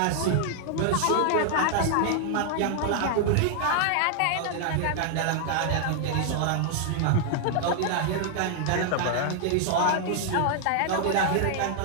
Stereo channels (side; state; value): both; different; correlation 0.00